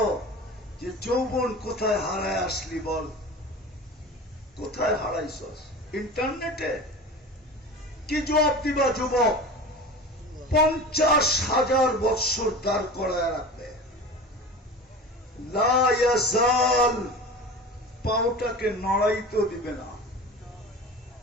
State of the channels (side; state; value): both; normal; correlation 0.34